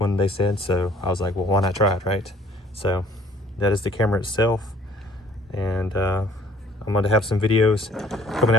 they said. So I was like, well, why not try it, right? So that is the camera itself, and I'm going to have some videos coming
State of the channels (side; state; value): both; normal; correlation 0.56